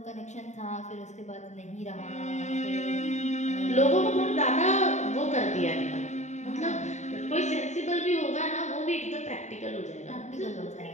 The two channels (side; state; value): right; late; 0.34 ms